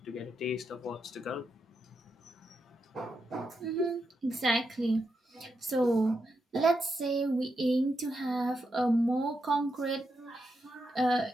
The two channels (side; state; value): both; normal; correlation 0.84